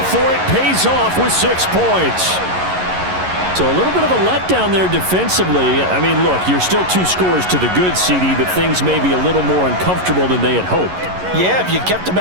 for it pays off with 6 points. So a little bit of a letdown there defensively. I mean, look, you're still 2 scores to the good, CD, but things may be a little more uncomfortable than they had hoped. Yeah, if you kept him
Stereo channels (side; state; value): left; late; 11 ms